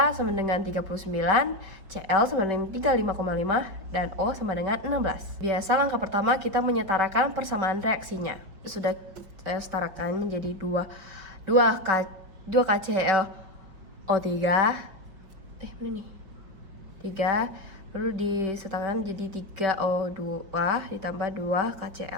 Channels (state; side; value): late; left; 5.0 ms